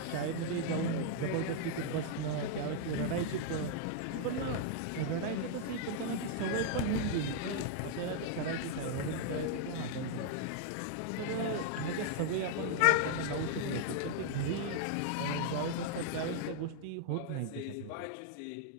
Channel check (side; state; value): both; different; correlation 0.00